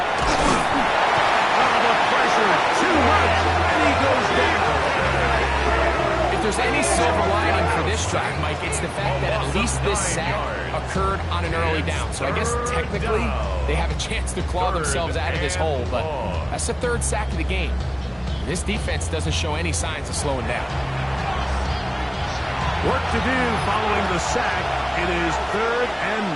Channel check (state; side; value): identical; both; correlation 1.00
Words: The pressure too much, and he goes down. If there's any silver lining for this drive, Mike, it's the fact that at least this sack occurred on an early down. So I guess technically they have a chance to claw themselves out of this hole, but that's the 3rd sack of the game. This defense doesn't show any signs of slowing down. Work to do following the sack. It is 3rd